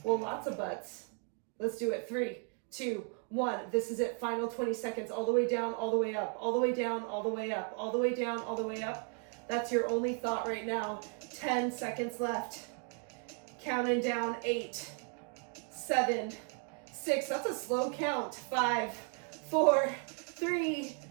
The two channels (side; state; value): left; quieter; 39.3 dB